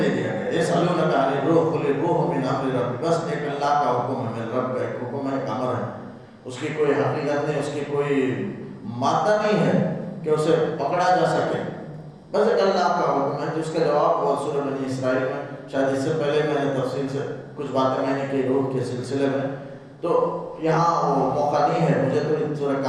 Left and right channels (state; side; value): identical; both; correlation 1.00